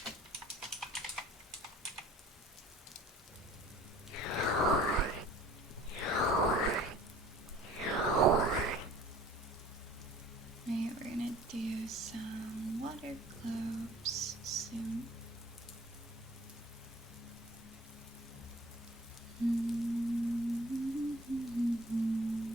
Alright, we're gonna do some water globes soon.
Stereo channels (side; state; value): both; normal; correlation 0.50